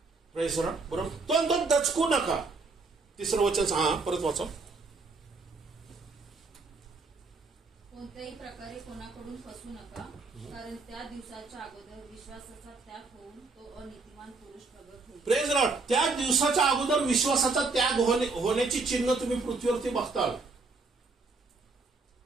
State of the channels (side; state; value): left; quieter; 4.0 dB